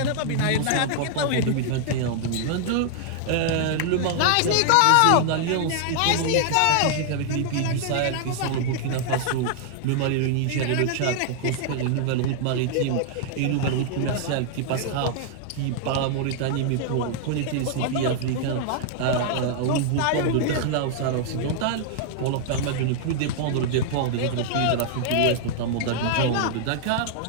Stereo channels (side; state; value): both; different; correlation 0.00